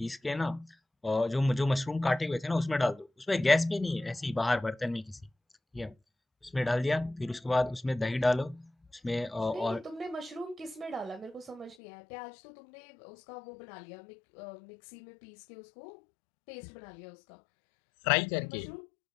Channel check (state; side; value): drops out; right; at 11.8 s